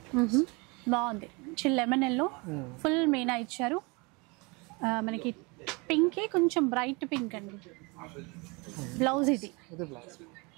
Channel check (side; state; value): left; quieter; 28.3 dB